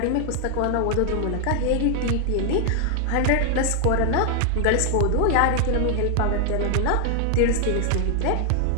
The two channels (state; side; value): different; both; correlation 0.00